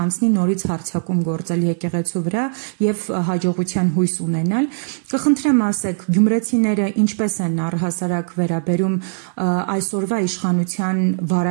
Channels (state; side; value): silent; left; digital silence